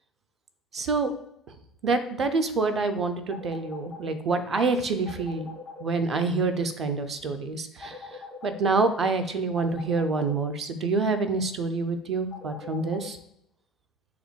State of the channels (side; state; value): left; quieter; 3.3 dB